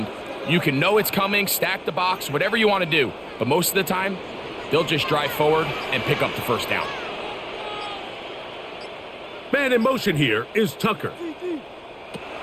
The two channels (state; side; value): identical; both; correlation 1.00